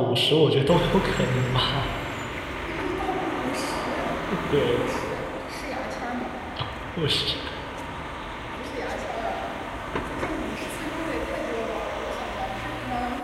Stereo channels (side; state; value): both; identical; correlation 1.00